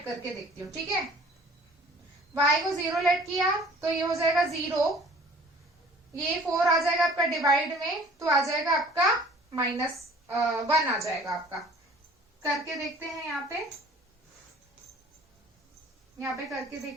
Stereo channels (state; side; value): normal; both; correlation 0.50